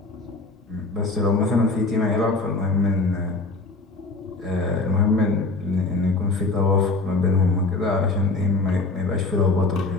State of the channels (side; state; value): right; quieter; 3.4 dB